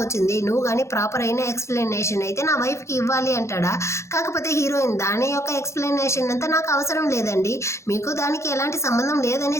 వచ్చింది, నువ్వు కానీ ప్రాపర్ అయిన ఎక్స్ప్లెనేషన్ అయితే నా వైఫ్ కి ఇవ్వాలి అంటాడా. కాకపోతే హీరోయిన్ దాని యొక్క ఎక్స్ప్లెనేషన్ అంతా నాకు అవసరం లేదండి, మీకు దానికి ఎలాంటి సంబంధం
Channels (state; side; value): late; right; 0.14 ms